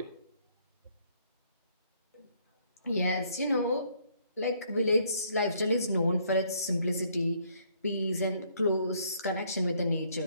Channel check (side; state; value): both; inverted; correlation -0.67